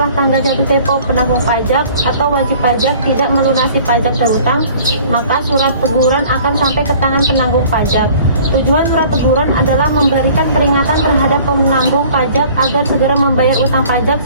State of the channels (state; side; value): inverted; both; correlation -0.50